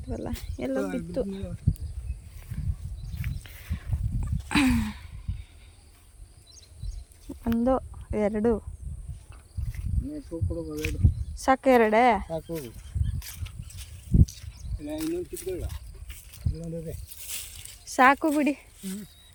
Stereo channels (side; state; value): both; identical; correlation 1.00